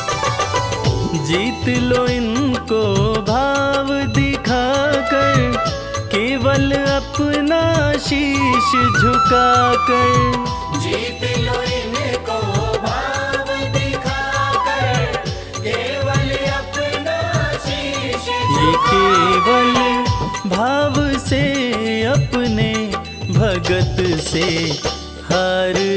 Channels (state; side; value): identical; both; correlation 1.00